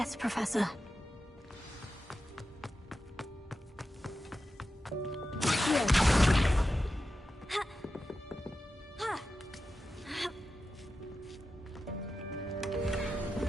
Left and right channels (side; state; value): both; normal; correlation 0.91